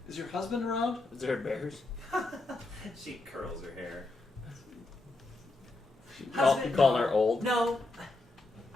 Is your husband around? Is there bears? She curls her hair. You calling her old? No,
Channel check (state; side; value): quieter; right; 3.1 dB